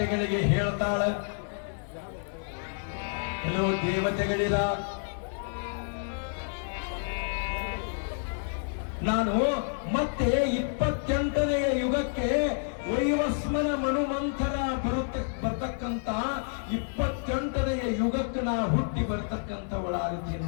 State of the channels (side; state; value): right; silent; digital silence